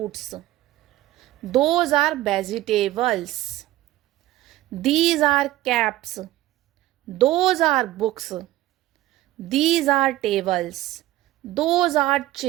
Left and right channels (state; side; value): quieter; left; 15.8 dB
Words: those are vegetables. These are caps, those are books. These are tables, those are